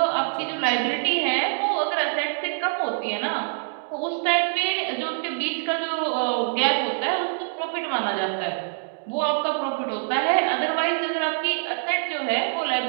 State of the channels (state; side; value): silent; left; digital silence